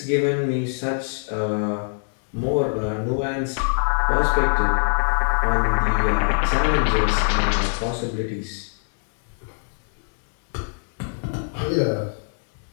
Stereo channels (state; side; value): silent; right; digital silence